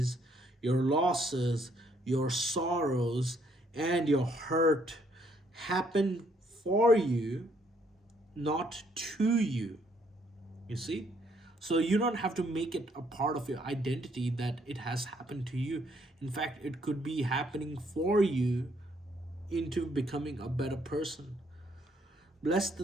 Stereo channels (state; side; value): normal; both; correlation 0.69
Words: your losses, your sorrows, and your hurt happen for you, not to you. You see? So you don't have to make it a part of your identity that it has happened to you. In fact, it could be happening for you into becoming a better person. Bless